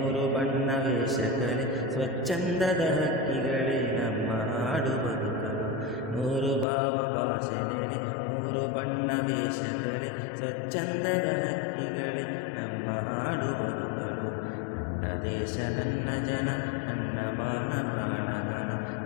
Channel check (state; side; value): drops out; right; at 6.7 s